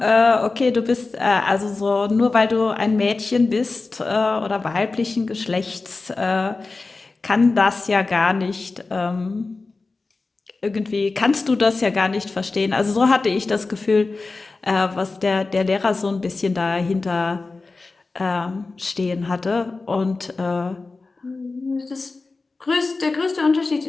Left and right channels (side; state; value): right; quieter; 3.7 dB